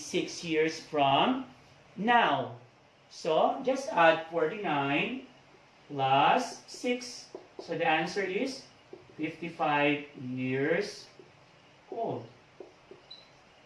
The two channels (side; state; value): both; identical; correlation 1.00